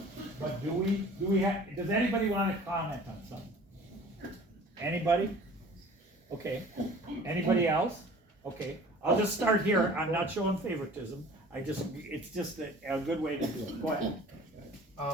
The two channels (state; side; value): normal; both; correlation 0.47